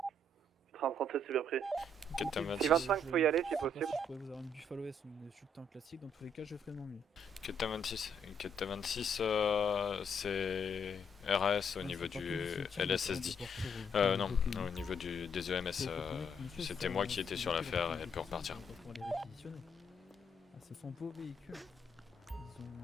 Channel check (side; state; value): both; normal; correlation 0.72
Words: 30-37, c'est bien pris. Captain Si 26. 25, faut y aller si Je sais pas possible. si je pourrais vous avoir une Buffalo S ou une Sultan classique, dans tous les cas, je ferai de mon mieux. Captain 26. Captain 26, c'est RAS au niveau du LSSD. Non, au niveau des EMS. C'était moi qui étais sur l'affaire et elle peut repartir. Pour les réquisitionner. Ah, ce sont vos véhicules. Ils ont...